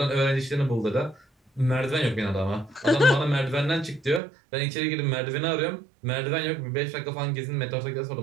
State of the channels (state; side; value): drops out; left; at 4.2 s